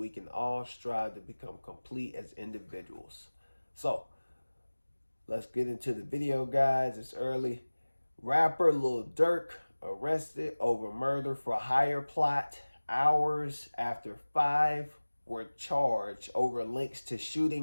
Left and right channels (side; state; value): both; inverted; correlation -1.00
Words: can all strive to become complete as individuals. So, let's get into the video, guys. It's early. Rapper Lil Durk arrested over murder for hire plot hours after 5 were charged over links to